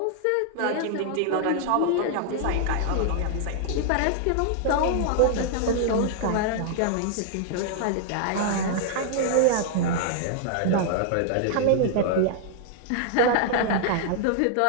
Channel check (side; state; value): both; different; correlation -0.01